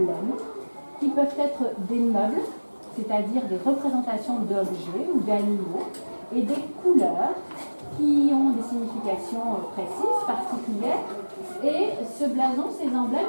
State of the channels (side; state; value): both; inverted; correlation -1.00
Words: qui peuvent être des meubles, c'est-à-dire des représentations d'objets ou d'animaux, et des couleurs qui ont des significations précises, particulières. Et ce blason, ces